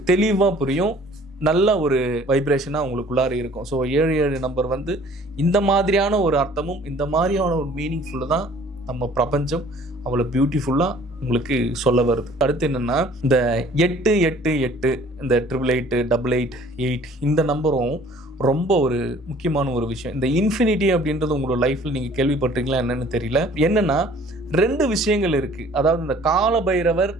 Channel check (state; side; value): normal; both; correlation 0.53